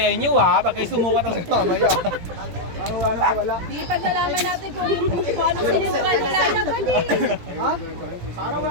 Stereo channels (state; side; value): late; left; 17 ms